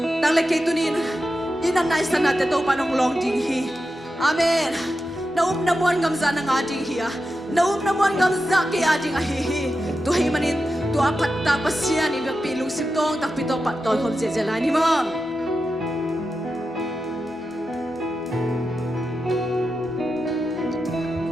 nang le ke tunin inan nai sana te to pa nong long ding hi amen na mon ngam za na nga ding hi na mon ngam za ke a ding a hi to hi manin to apat ta pasia ni pi lung sim tong tak pi to pa toy khom sia sia la ni mo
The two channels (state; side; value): normal; both; correlation 0.90